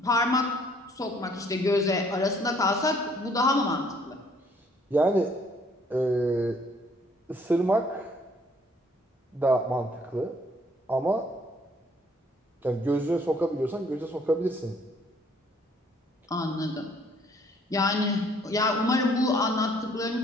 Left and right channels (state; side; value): normal; both; correlation 0.62